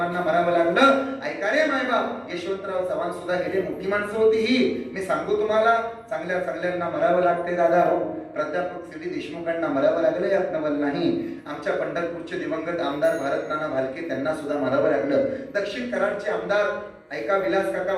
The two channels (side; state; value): both; identical; correlation 1.00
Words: मरावं लागलं। ऐका रे मायबाप, यशवंतराव चव्हाण सुद्धा गेले, मोठी माणसं होती ही। मी सांगू तुम्हाला, चांगल्या चांगल्यांना मरावं लागते दादा हो। प्राध्यापक CD देशमुखांना मरावं लागलं यात नवल नाही। आमच्या पंढरपूरचे दिवंगत आमदार भारत नाना भालके, त्यांना सुद्धा मरावं लागलं। दक्षिण कराडचे आमदार ऐका विलास काका